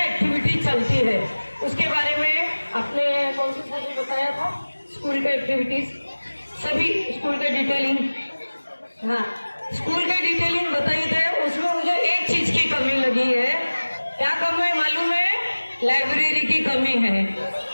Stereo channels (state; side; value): inverted; both; correlation -1.00